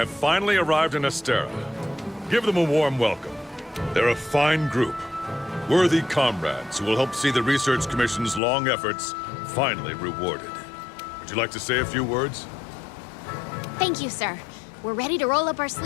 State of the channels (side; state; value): right; drops out; at 8.4 s